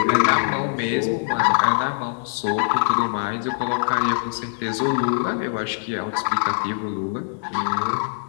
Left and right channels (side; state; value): right; silent; digital silence